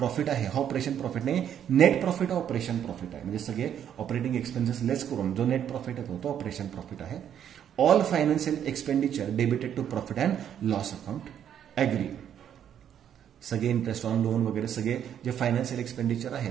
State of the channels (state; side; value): quieter; left; 9.5 dB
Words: आहे हा ऑपरेशन प्रॉफिट नाही, नेट प्रॉफिट हा ऑपरेशन प्रॉफिट आहे. म्हणजे सगळे ऑपरेटिंग एक्सपेन्सेस लेस करून जो नेट प्रॉफिट येतो तो ऑपरेशन प्रॉफिट आहे. All financial expenditure debited to profit and loss account. Agree. सगळे इंटरेस्ट ऑन लोन वगैरे सगळे जे फायनान्शियल एक्सपेंडिचर